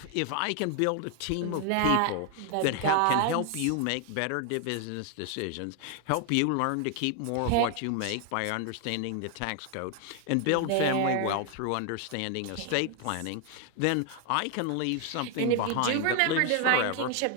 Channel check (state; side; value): different; both; correlation 0.00